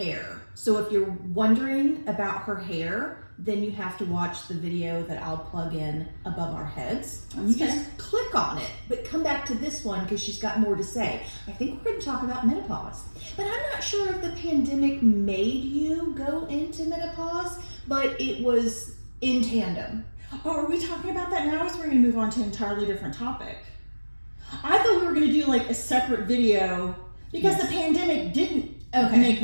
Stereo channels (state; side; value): inverted; both; correlation -1.00